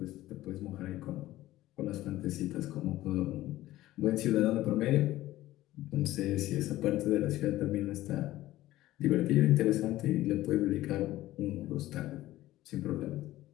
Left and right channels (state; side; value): quieter; right; 15.7 dB